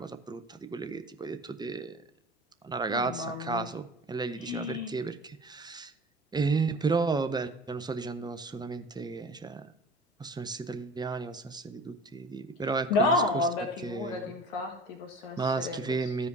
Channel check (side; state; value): both; normal; correlation 0.41